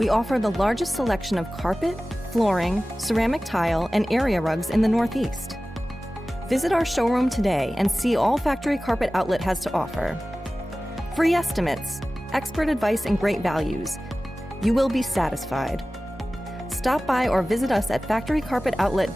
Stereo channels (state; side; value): normal; both; correlation 0.96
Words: offer the largest selection of carpet, flooring, ceramic tile, and area rugs in the Northeast. Visit our showroom today and see all Factory Carpet Outlet has to offer. Free estimates, expert advice, and great values. You will be satisfied. Stop by or visit us at